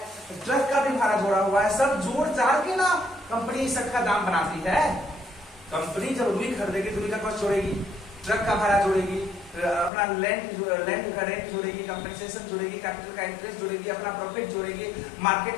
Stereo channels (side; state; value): right; drops out; at 9.9 s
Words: ट्रक का भी भाड़ा जोड़ा हुआ है। सब जोड़ जाड़ के ना कंपनी इस का दाम बनाती है। कंपनी जब रुई खरीदेगी तो रुई का कॉस्ट जोड़ेगी, ट्रक का भाड़ा जोड़ेगी, अपना लैंड का रेंट जोड़ेगी, कंपेंसेशन जोड़ेगी, कैपिटल का इंटरेस्ट जोड़ेगी, अपना प्रॉफिट जोड़ेगी, मार्केट